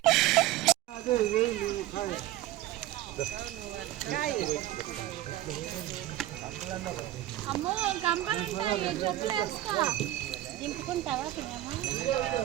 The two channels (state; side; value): quieter; left; 14.7 dB